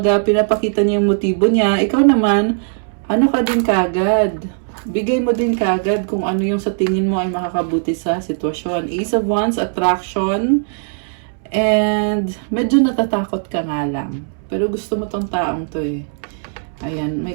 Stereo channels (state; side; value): silent; left; 66 dB below the other